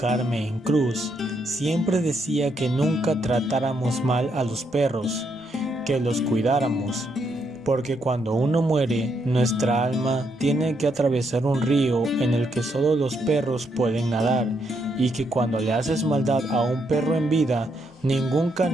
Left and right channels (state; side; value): normal; both; correlation 0.77